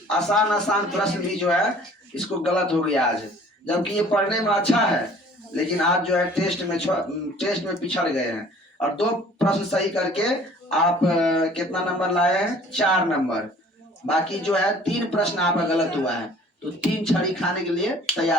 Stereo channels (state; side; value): normal; both; correlation 0.52